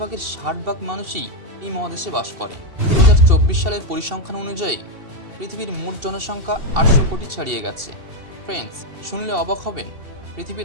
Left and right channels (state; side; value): late; left; 2.7 ms